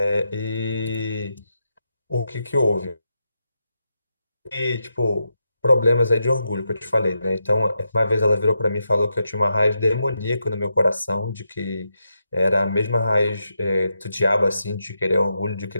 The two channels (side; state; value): both; inverted; correlation -0.85